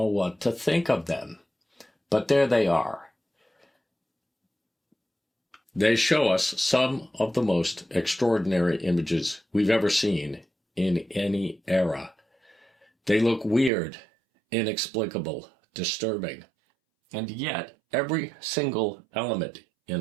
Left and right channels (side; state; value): left; drops out; at 13.7 s